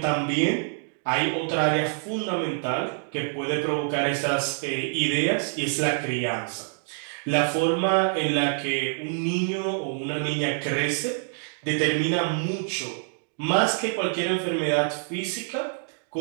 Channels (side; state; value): left; silent; digital silence